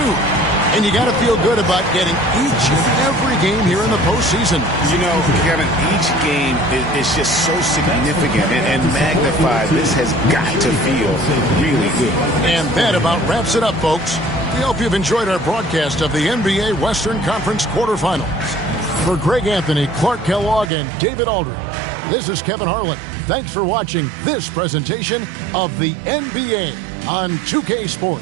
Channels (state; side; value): drops out; left; at 20.7 s